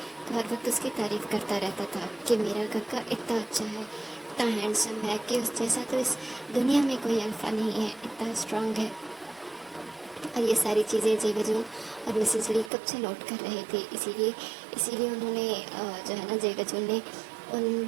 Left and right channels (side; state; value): left; drops out; at 12.7 s